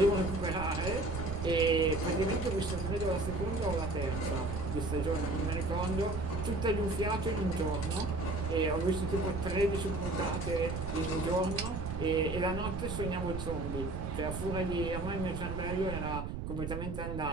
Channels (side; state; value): right; noise; rumble, 5 dB below the sound